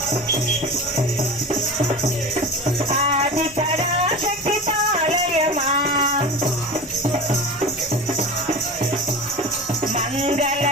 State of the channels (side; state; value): both; normal; correlation 0.31